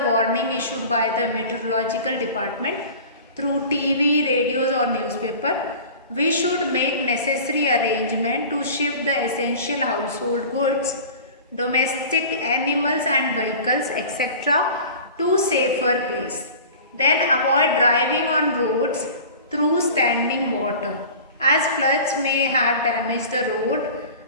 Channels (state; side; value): inverted; both; correlation -0.39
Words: warning issued by the meteorological department through TV, radios or newspaper. We should make necessary arrangement to shift the essential household goods, domestic animals and vehicles, etc. to safer place. Then avoid driving on roads through standing water, as floods may have damaged the road,